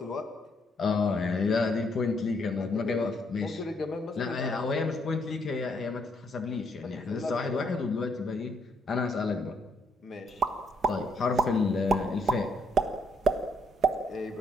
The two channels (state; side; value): normal; both; correlation 0.72